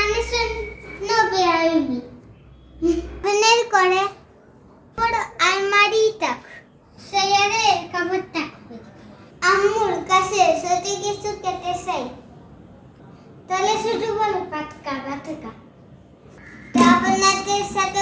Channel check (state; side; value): identical; both; correlation 1.00